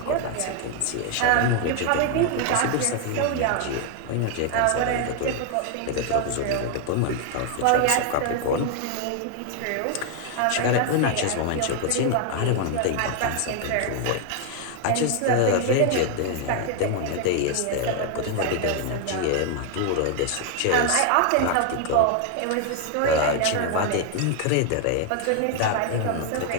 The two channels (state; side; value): different; both; correlation 0.00